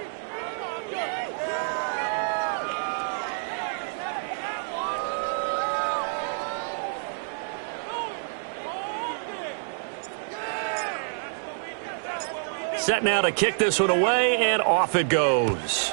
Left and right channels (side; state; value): left; silent; digital silence